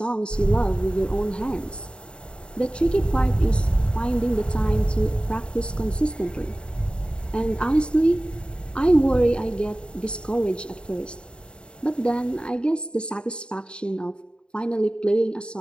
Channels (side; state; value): right; late; 0.051 ms